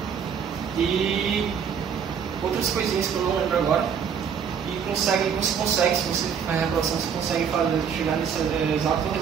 e outras coisinhas que eu não lembro agora. E você consegue, se você faz a reprodução, você consegue chegar nesse exato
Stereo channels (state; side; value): quieter; left; 7.2 dB